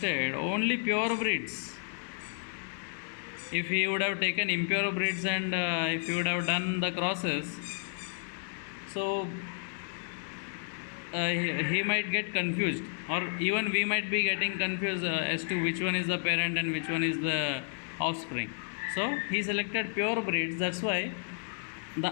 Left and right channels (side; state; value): right; silent; 57 dB below the other